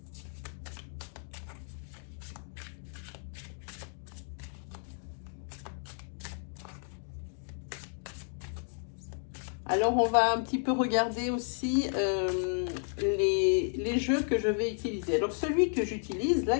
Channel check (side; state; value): right; silent; 56 dB below the other